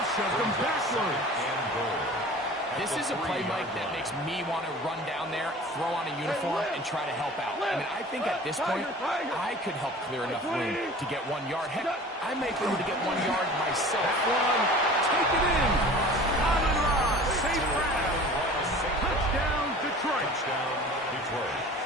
shoved him backwards. This is a play, Mike, that makes me want to run down there, throw on a uniform, and try to help out. I mean, I think at this point, I could help clear enough room to get 1 yard. Heck, I may be able to get 1 yard myself. That one, take it in. Amon Ross, safe grab. Touchdown, Detroit.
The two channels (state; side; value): normal; both; correlation 0.42